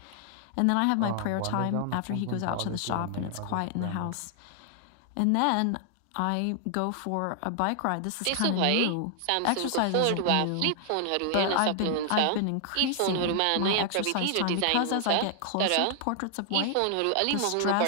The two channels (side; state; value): both; different; correlation 0.00